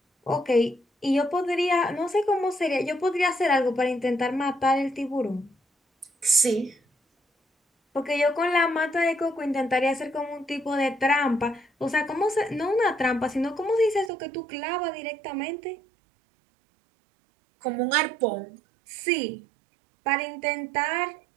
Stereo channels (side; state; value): left; drops out; at 14.1 s